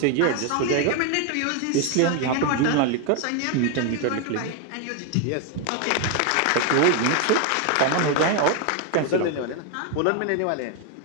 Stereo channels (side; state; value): both; different; correlation 0.01